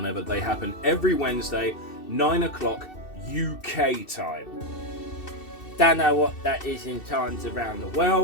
they happen. Every Wednesday, 9 o'clock UK time. Don't know what that is in times around the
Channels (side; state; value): right; late; 2.7 ms